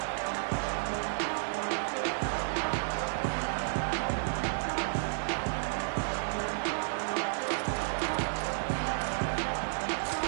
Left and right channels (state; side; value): silent; left; 57 dB below the other